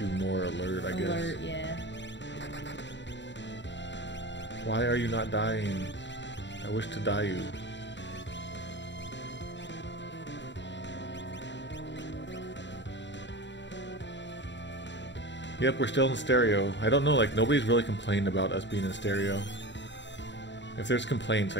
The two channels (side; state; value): right; late; 0.52 ms